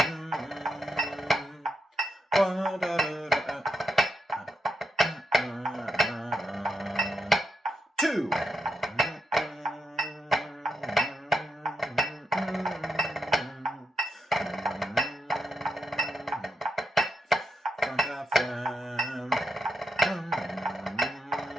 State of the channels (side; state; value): both; normal; correlation 0.84